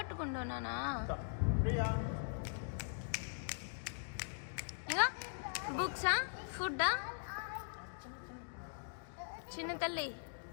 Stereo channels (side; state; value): right; silent; digital silence